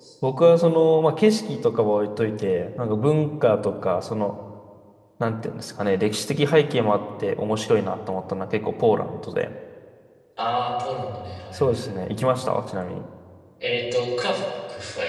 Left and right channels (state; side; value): identical; both; correlation 1.00